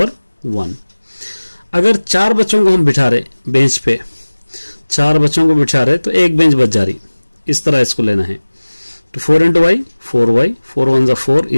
1। अगर 4 बच्चों को हम बिठा रहे बेंच पे, 4 बच्चों को बिठा रहे तो एक बेंच बच जा रही, इस तरह इसको लेना है। तो 4 into y 4y, 4 1 4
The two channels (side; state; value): both; inverted; correlation -1.00